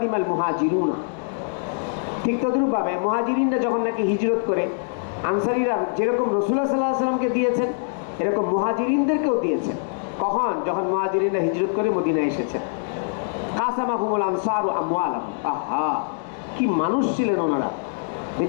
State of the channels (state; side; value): silent; right; 63 dB below the other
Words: মুহাজিরুনা। ঠিক তদ্রূপভাবে মুহাজিরিনরা যখন নাকি হিজরত করে, আনসারীরা যেরকম রাসূলুল্লাহ সাল্লাল্লাহু আলাইহি ওয়াসাল্লামকে দিয়েছেন, এরকম মুহাজিরিনদেরকেও দিয়েছেন। কখন? যখন মুহাজিরিনরা হিজরত করে মদিনায় এসেছেন। কাসামাহুমুল আনসারু আমওয়ালাহুম। আহা, কি মানুষ ছিলেন ওনারা!